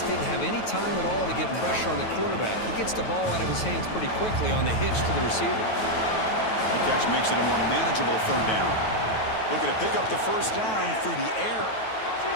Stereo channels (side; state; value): right; late; 9.2 ms